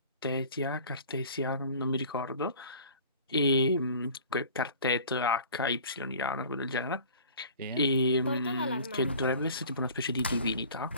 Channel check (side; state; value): both; inverted; correlation -0.45